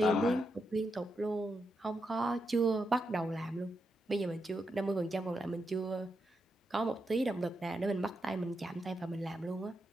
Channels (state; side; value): normal; both; correlation 0.84